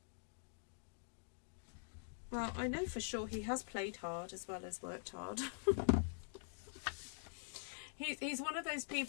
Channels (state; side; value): silent; right; digital silence